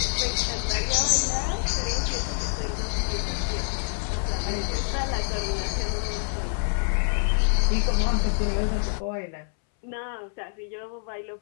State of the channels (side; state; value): right; silent; 61 dB below the other